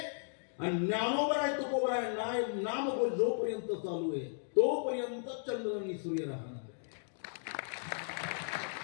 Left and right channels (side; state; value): right; silent; digital silence